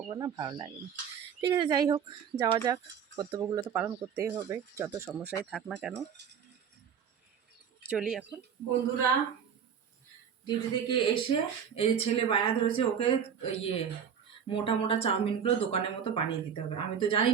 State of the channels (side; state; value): left; quieter; 7.7 dB